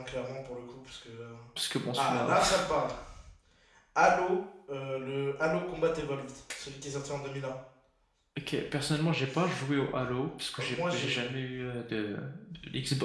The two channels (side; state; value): both; identical; correlation 1.00